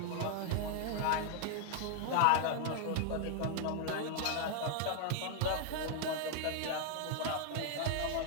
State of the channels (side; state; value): both; different; correlation 0.00